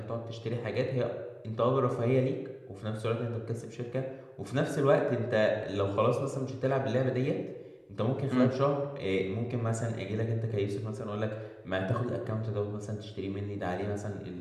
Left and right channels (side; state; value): both; identical; correlation 1.00